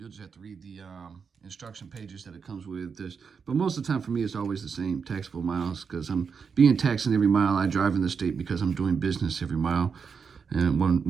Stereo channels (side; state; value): left; quieter; 6.0 dB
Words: just have to read the instruction pages that it comes with this. But most of the time for me, it's always the same, taxable miles, because I'm being taxed in every mile I drive in the state because I'm doing business every mile in